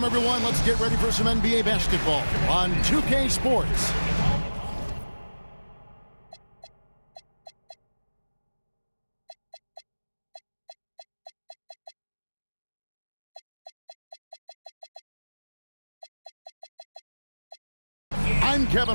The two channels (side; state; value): both; inverted; correlation -1.00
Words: everyone. Let's get ready for some NBA basketball on 2K Sports. I'm Kevin